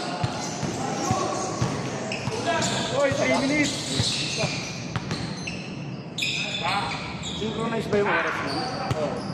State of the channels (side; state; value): both; identical; correlation 1.00